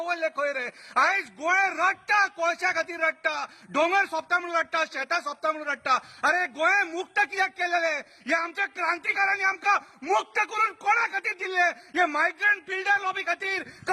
खंय रे. आयज गोंय रडटा, कोळशा खातीर रडटा, डोंगर सोंपता म्हणून रडटा, शेतां सोंपता म्हणून रडटा. अरे गोंय मुक्त कित्याक केलेले? हे आमच्या क्रांतिकारांनी आमकां मुक्त करून कोणा खातीर दिल्ले? हे मायग्रंट बिल्डर लॉबी खातीर,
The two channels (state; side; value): identical; both; correlation 1.00